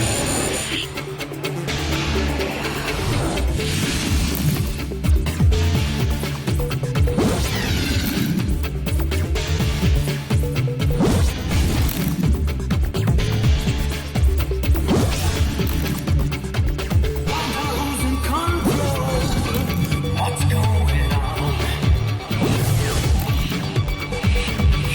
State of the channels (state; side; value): identical; both; correlation 1.00